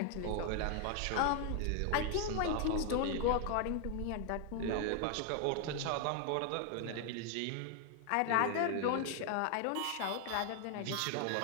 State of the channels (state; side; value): different; both; correlation 0.00